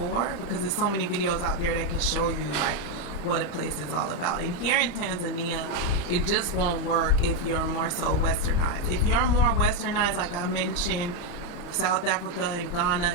because there's so many videos out there that can show you like what a place is all about. And here in Tanzania, it just won't work if you're more so westernized. If you're more westernized, like I mentioned, South Africa and Ghana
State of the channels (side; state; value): right; late; 35 ms